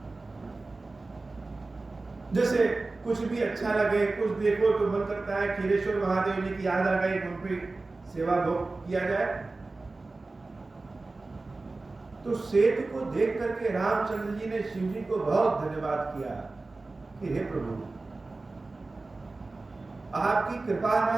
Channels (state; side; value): quieter; left; 3.4 dB